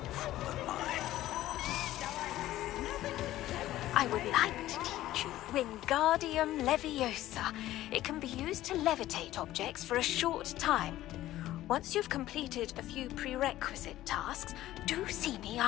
than mine. I would Wingardium Leviosa. It can be used to levitate objects for a short time. Once you've completed a few prerequisite tasks, do see me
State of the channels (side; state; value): right; quieter; 14.7 dB